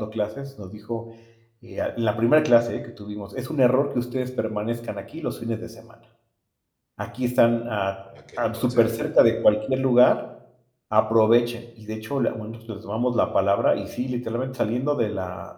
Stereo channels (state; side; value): identical; both; correlation 1.00